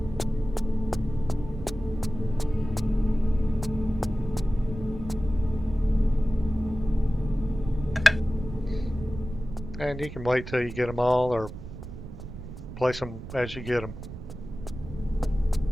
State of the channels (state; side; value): noise; right; rumble, 11 dB below the sound